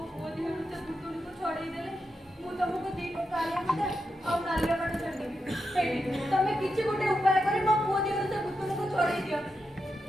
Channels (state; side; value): normal; both; correlation 0.86